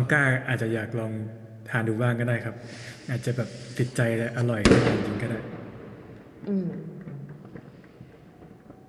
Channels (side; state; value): both; identical; correlation 1.00